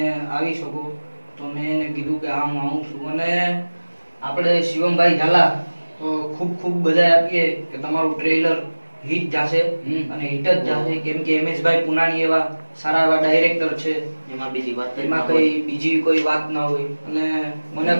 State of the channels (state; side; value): inverted; both; correlation -1.00